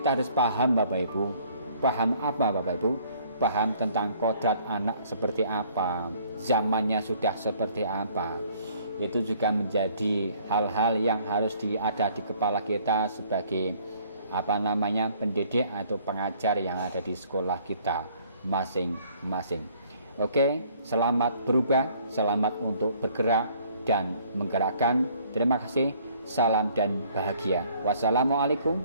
harus paham Bapak Ibu. Paham apa Bapak Ibu? Paham tentang kodrat anak seperti apa, zamannya sudah seperti apa. Itu juga menjadi hal-hal yang harus ada di kepala kita sebagai pendidik atau pengajar yang ada di sekolah kita masing-masing. Oke, selamat berubah, selamat untuk bergerak dan menggerakkan. Terima kasih, salam dan bahagia. Wassalamualaikum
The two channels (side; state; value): both; inverted; correlation -0.60